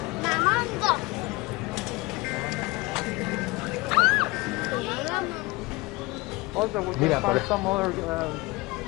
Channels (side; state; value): right; quieter; 22.9 dB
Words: Mamando. also we Mira, can find por- some other